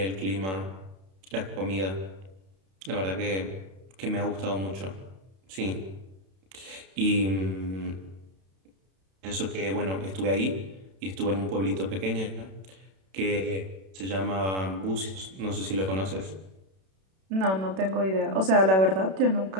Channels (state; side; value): late; left; 31 ms